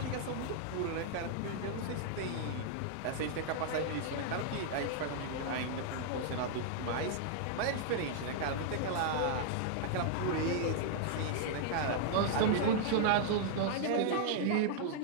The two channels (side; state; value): both; different; correlation -0.01